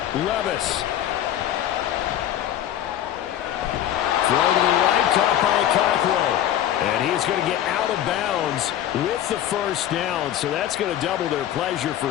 Levis. Throw to the right, caught by Okonkwo. And he's going to get out of bounds with the first down, so that's going to double their pleasure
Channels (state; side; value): quieter; right; 11.5 dB